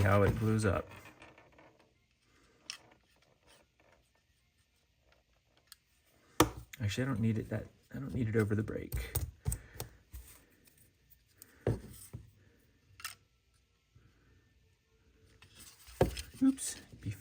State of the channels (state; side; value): identical; both; correlation 1.00